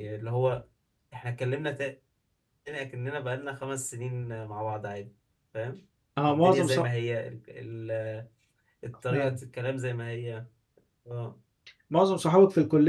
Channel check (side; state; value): both; identical; correlation 1.00